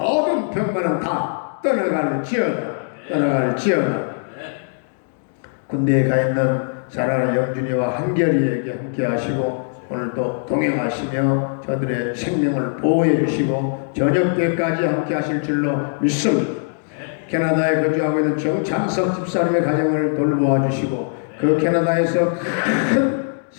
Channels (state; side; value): silent; right; digital silence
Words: 병마는 다 떠나갈지어다. 군대에 가 있는 사랑하는 영준이와 한결이에게 함께 하시고 오늘도 동행하시며 저들의 생명을 보호해 주시고 저녁 때까지 함께 하실 줄로 믿습니다. 캐나다에 거주하고 있는 정찬석 집사님의 가정을 돌보아 주시고 그 캐나다에서 큰